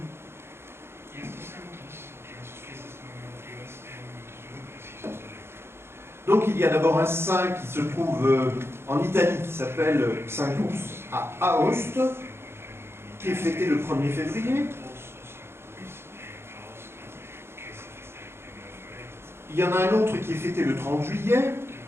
Donc il y a d'abord un saint qui se trouve en Italie, qui s'appelle Saint Ours à Aoste, qui est fêté le 1er février. Il y en a un autre qui est fêté le 30 juillet,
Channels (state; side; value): late; left; 0.12 ms